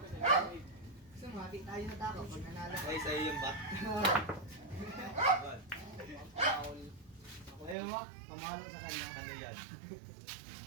Kasi mati tayo na tako pag nanalo. Ay, sa'yo yung bat. Foul. Ayaw mo, pamahalo sa kanya. Ano yan?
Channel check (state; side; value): drops out; left; at 7.8 s